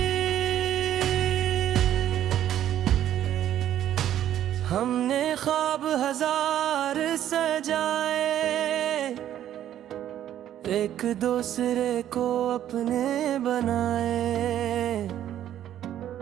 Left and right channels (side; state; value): left; quieter; 11.4 dB